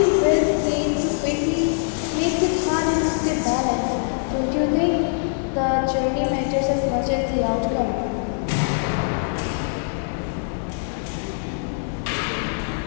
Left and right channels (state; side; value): silent; right; digital silence